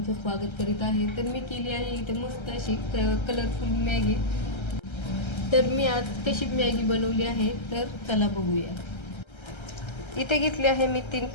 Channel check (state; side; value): late; right; 1.3 ms